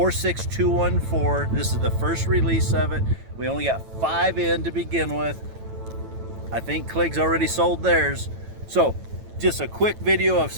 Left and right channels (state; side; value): late; left; 9.0 ms